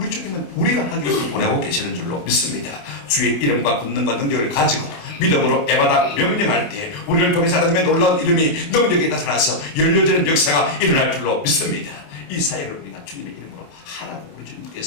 주님은 우리가 하기를 원하고 계시는 줄로 믿습니다. 주의 이름과 권능과 능력을 가지고 믿음으로 에바다 명령할 때 우리를 통해서 하나님의 놀라운 이름이 능력이 나타나서 열려지는 역사가 일어날 줄로 믿습니다. 이 사역을 우리가 주님의 이름으로 하라고 우리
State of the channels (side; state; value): right; late; 27 ms